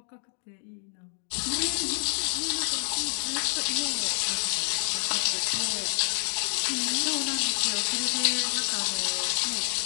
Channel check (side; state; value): right; silent; 59 dB below the other